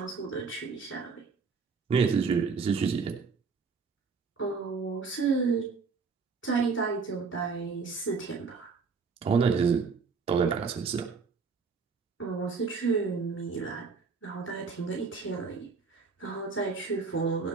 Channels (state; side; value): quieter; left; 5.0 dB